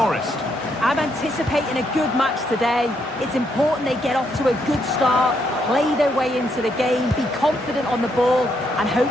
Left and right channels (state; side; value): normal; both; correlation 0.76